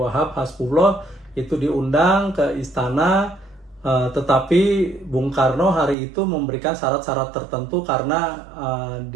Hasbullah itu diundang ke istana Tetapi Bung Karno hari itu memberikan syarat-syarat tertentu karena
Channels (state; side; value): drops out; left; at 6.0 s